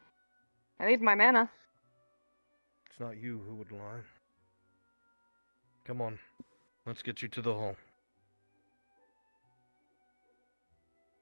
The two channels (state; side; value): inverted; both; correlation -1.00